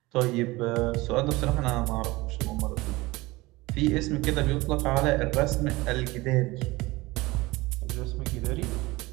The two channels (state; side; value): quieter; left; 21.3 dB